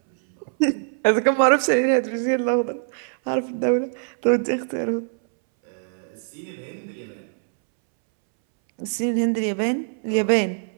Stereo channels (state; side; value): silent; left; 63 dB below the other